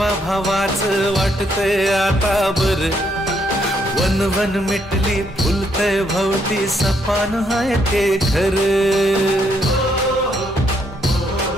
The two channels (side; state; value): both; normal; correlation 0.73